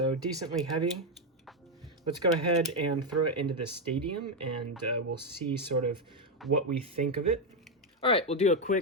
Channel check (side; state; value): both; normal; correlation 0.05